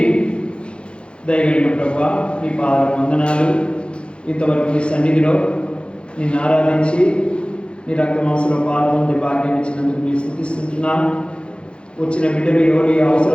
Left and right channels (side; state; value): right; late; 0.057 ms